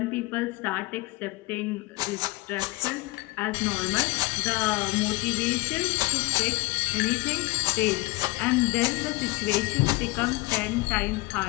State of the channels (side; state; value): right; quieter; 22.6 dB